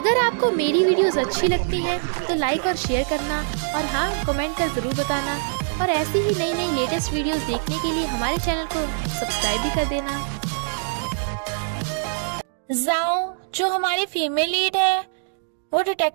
आपको मेरी वीडियोस अच्छी लगती हैं तो लाइक और शेयर करना, और हाँ, कमेंट कर ज़रूर बताना। और ऐसी ही नई नई लेटेस्ट वीडियोस देखने के लिए हमारे चैनल को सब्सक्राइब भी कर देना। जाओ, जो हमारी फीमेल लीड है, वो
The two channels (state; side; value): silent; left; digital silence